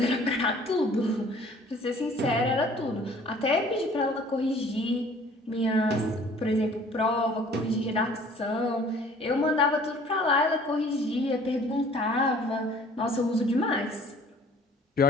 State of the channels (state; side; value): normal; both; correlation 0.53